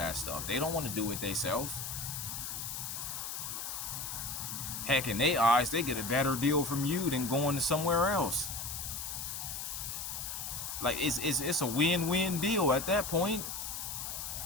stuff. They don't want to do it themselves. Heck, in their eyes, they get a better deal from you than going to somewhere else. Like, it's a win-win deal at that point.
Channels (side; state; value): left; noise; hiss, 5 dB below the sound